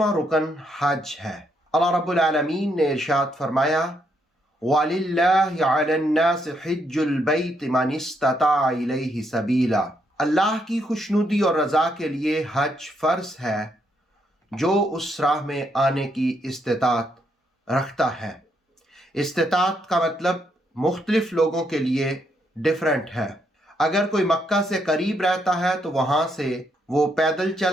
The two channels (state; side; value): normal; both; correlation 0.76